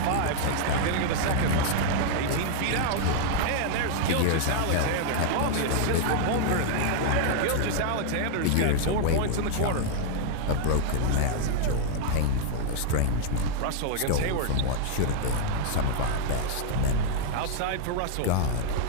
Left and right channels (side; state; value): both; different; correlation 0.00